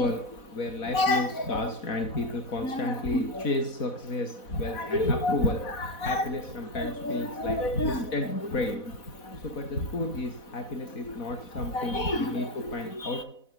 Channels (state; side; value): late; right; 4.1 ms